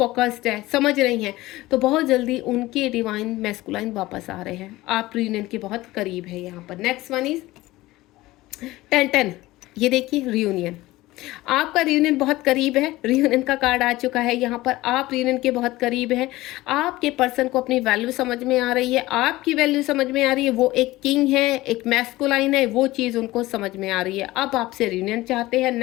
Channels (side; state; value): right; quieter; 18.2 dB